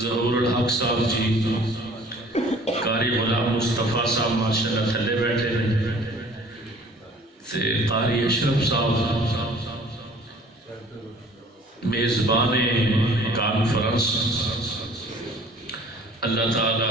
ظہور الحق صاحب جی قاری غلام مصطفیٰ صاحب ماشاءاللہ تھلے بیٹھے ہیں تے قاری اشرف صاحب میزبان کانفرنس. اللہ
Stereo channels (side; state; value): both; normal; correlation 0.51